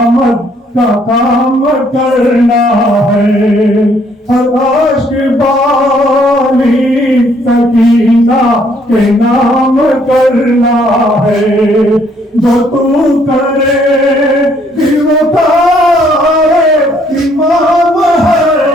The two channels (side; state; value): both; normal; correlation 0.66